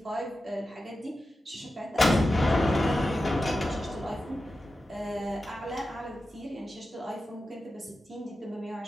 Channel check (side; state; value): both; normal; correlation 0.92